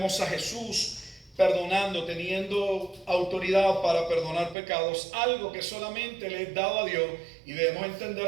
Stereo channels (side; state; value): left; drops out; at 4.5 s